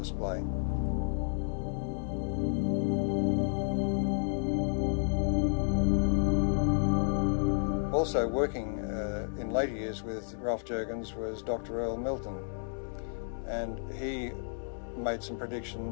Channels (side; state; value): right; silent; digital silence